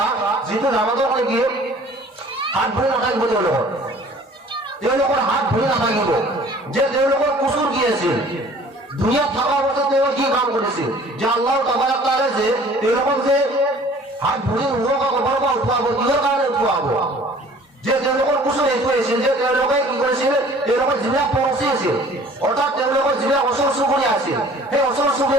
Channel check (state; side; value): normal; both; correlation 0.51